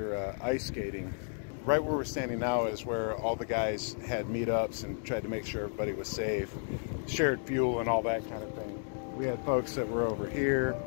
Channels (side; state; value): right; silent; 56 dB below the other